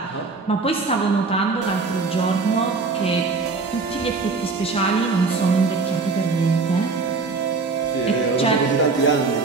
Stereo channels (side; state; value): left; quieter; 4.2 dB